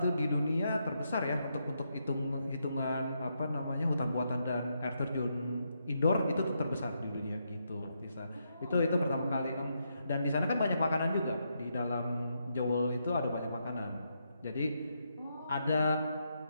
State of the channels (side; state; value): both; inverted; correlation -0.80